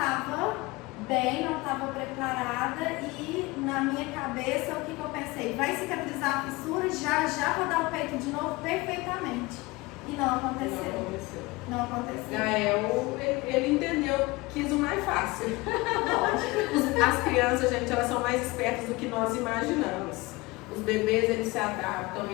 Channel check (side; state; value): right; quieter; 22.6 dB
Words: bem, não estava preparada e na minha cabeça o que eu pensei? Vai cicatrizar a fissura, já vou dar o peito de novo perfeitamente. E não aconteceu. Não aconteceu. Gael, ele entendeu, quis o mais fácil. As crianças, gente, elas são mais espertas do que nós imaginamos. Os bebês, eles se adaptam,